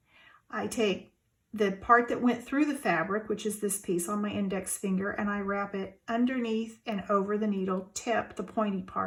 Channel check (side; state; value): both; identical; correlation 1.00